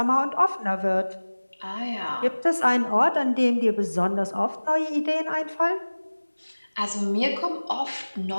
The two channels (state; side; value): inverted; both; correlation -1.00